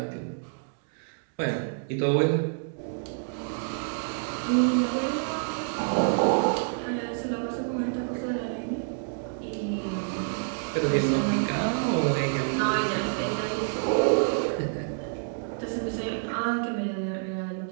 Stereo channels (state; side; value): silent; left; digital silence